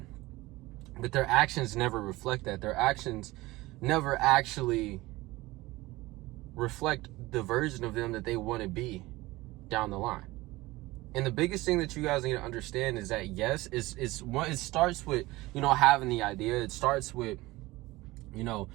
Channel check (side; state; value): left; quieter; 19.9 dB